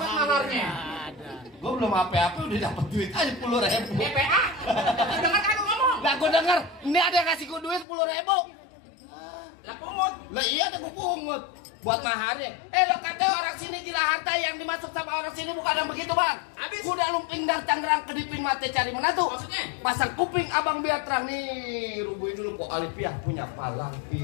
maharnya. Gue belum apa-apa udah dapat duit aja 10.000. DPA. Dengar kan lu ngomong? Lah gue denger, ini ada yang kasih gue duit 10.000. Lah pungut. Lah iya ada gue pungut buat maharnya. Lo kata orang sini Jilaharta yang dimasuk sama orang sini bukan yang begitu, Bang. Habis. Kuda lumping dari Tangerang kedipin mata cari menantu. Maksudnya? Pasang kuping abang biar terang nih. Rubuhin dulu Pok Alifia punya palang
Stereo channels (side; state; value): right; drops out; at 7.9 s